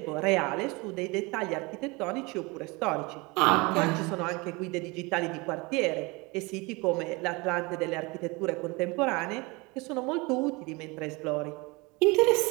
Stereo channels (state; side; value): quieter; left; 25.9 dB